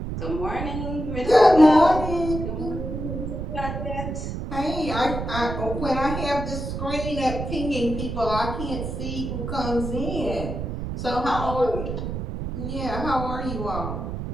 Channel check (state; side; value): noise; right; rumble, 5 dB below the sound